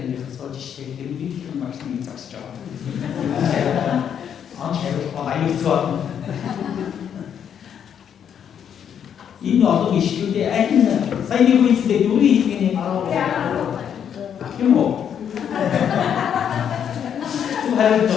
이 어떤 이슈 때 아이는 사이비고 있을 때 요리 이게 바로 뭐 하여튼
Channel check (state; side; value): quieter; right; 8.5 dB